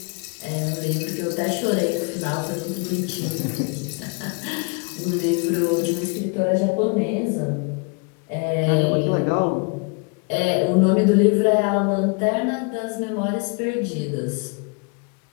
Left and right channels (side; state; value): right; quieter; 33.4 dB